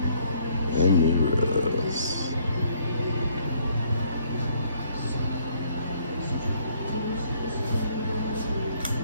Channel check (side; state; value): both; inverted; correlation -0.65